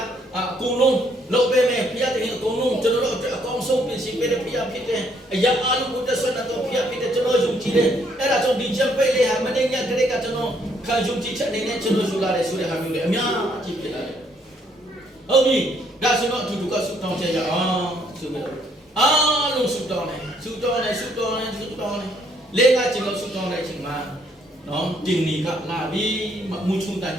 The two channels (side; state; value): both; normal; correlation 0.68